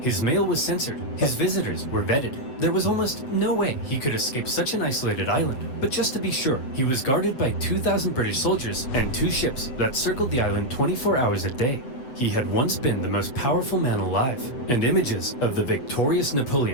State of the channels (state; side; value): late; right; 7.9 ms